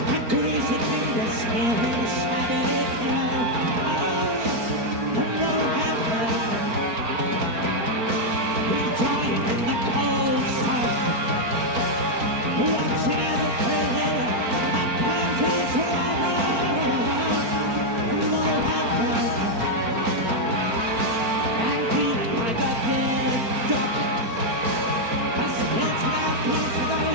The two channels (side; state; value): left; late; 4.4 ms